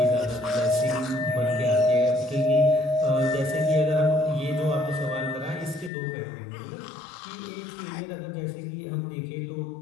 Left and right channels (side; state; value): right; drops out; at 5.9 s